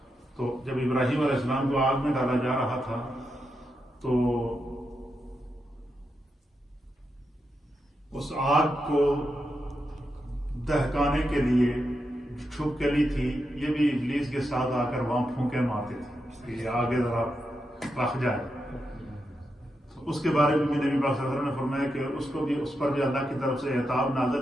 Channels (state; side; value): normal; both; correlation 0.86